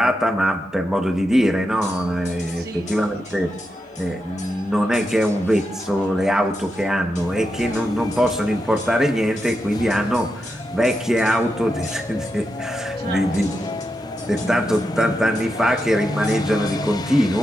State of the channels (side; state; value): both; normal; correlation 0.86